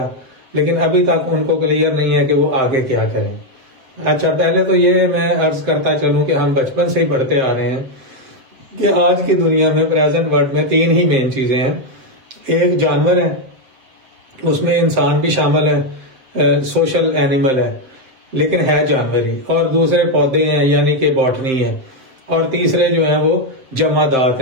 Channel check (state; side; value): late; left; 7.7 ms